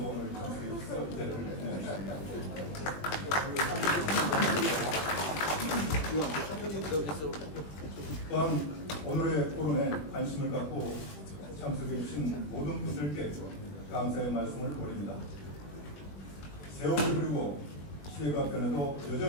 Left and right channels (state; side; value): late; right; 20 ms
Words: 오늘 참석해 주셔서 자리를 빛내주십니다. 또한 오늘의 포럼에 관심을 갖고 참석해 주신 모든 분들께 감사의 말씀을 드립니다. 세월이 흐르고 시대가 변해도